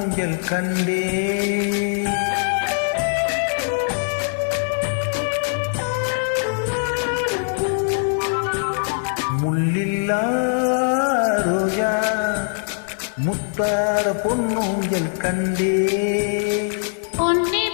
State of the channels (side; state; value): right; silent; 56 dB below the other